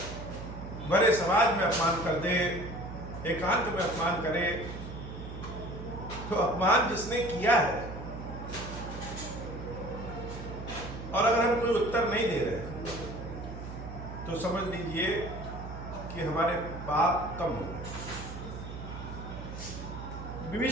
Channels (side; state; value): right; noise; hum, 9 dB below the sound